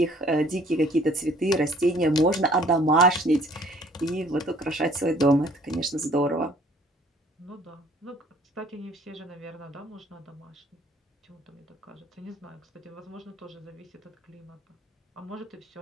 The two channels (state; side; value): normal; both; correlation 0.56